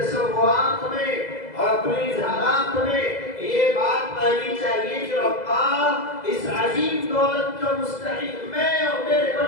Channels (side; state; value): right; late; 2.0 ms